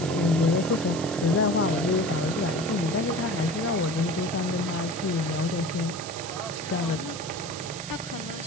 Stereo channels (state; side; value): noise; right; hiss, 10 dB below the sound